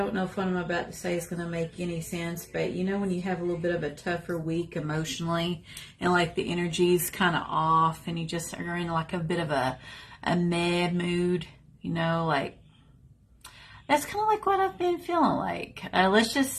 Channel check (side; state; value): both; identical; correlation 1.00